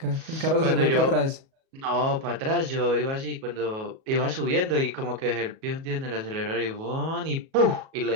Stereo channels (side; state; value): left; late; 37 ms